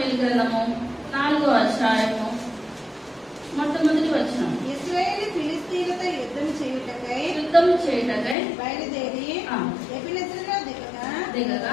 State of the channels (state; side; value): drops out; right; at 8.3 s